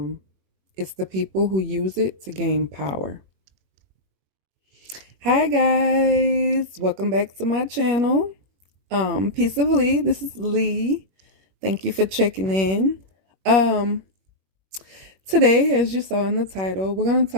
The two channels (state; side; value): late; left; 21 ms